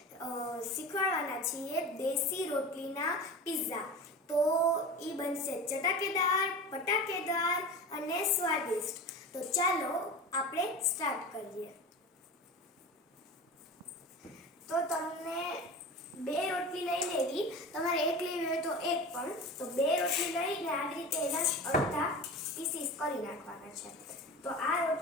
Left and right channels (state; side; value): normal; both; correlation 0.32